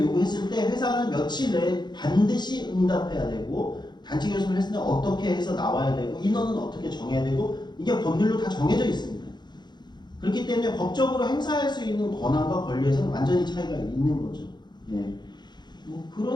때 회사는 며칠 내에 반드시 응답해야 되고 단체 교섭을 했을 때 어떻게 해서 나와야 되고 인원은 어떻게 정해야 되고 이게 법률로 다 정해져 있습니다. 그렇기 때문에 법적으로 행사할 수 있는 권한과 권리에서는 완전히 차이가 있는 거죠. 예. 뭐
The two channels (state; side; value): late; right; 0.21 ms